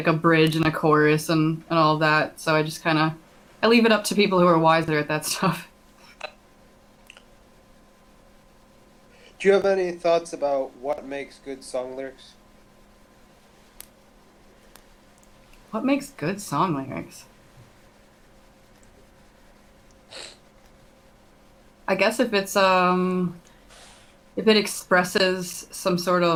a bridge and a chorus and all of that. So I just kind of I leave it up to people who are wiser at that stuff. Do you have any thoughts about what makes good song lyrics? What makes good song lyrics? I guess if it expresses some sort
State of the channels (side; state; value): both; identical; correlation 1.00